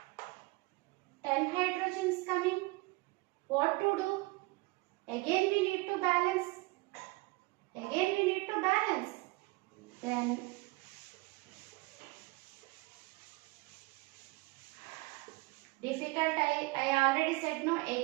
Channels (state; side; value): quieter; left; 24.5 dB